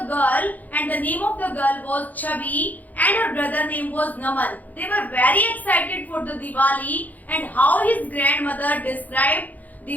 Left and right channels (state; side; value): late; right; 0.080 ms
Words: girl, and the name of the girl was Chabi, and her brother name was Naman. They were very excited for the Diwali and how his grandmother described